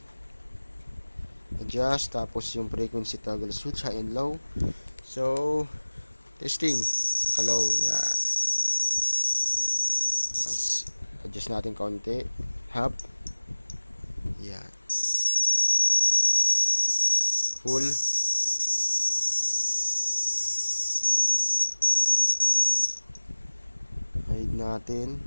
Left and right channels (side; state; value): both; inverted; correlation -1.00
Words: adjust, tapos yung frequency toggle switch high and low. So testing, naka-low yan. Tapos adjust natin konti, half yan, full, hide natin,